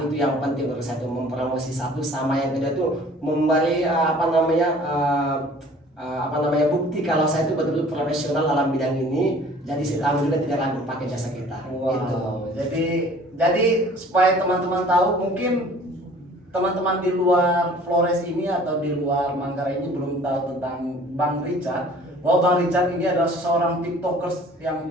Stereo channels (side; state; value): both; normal; correlation 0.50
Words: itu yang penting menurut saya, itu mempromosi satu, sama yang kedua itu memberi bukti kalau saya itu betul-betul profesional dalam bidang ini. Jadi si tamu juga tidak ragu pakai jasa kita. Wow. Gitu. Jadi supaya teman-teman tahu, mungkin teman-teman di luar Flores ini atau di luar Manggarai ini belum tahu tentang Bang Richard. Bahwa Bang Richard ini adalah seseorang TikTokers yang